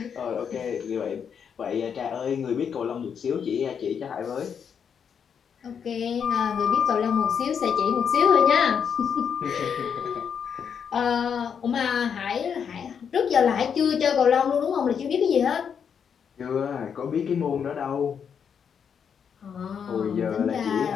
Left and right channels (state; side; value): quieter; right; 7.3 dB